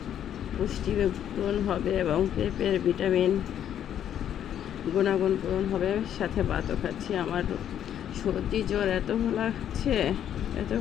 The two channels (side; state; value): right; quieter; 10.0 dB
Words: পুষ্টি পূরণ হবে এবং পেঁপের ভিটামিন গুণাগুণ পূরণ হবে, সাথে ভাতও খাচ্ছি। আমার সর্দি জ্বর এত লাগছে, এত